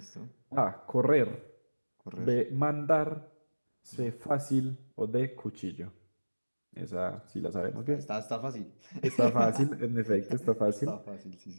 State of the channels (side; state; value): both; inverted; correlation -1.00